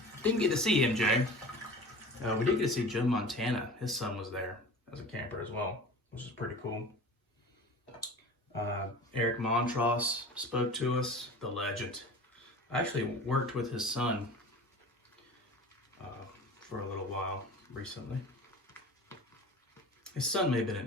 Didn't get to see MJ. We did get to see Joe Montana. His son was there as a camper as well, which is pretty cool. Eric Montross spoke to us, the legend. I actually worked with his son for a little while recently. His son may have been an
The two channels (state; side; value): normal; both; correlation 0.38